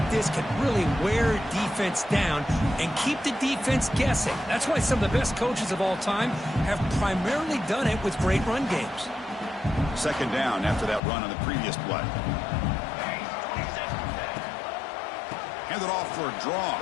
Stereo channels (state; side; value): drops out; right; at 11.0 s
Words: this can really wear defense down and keep the defense guessing. That's why some of the best coaches of all time have primarily done it with great run games. 2nd down after that run on the previous play. Hand it off for a draw.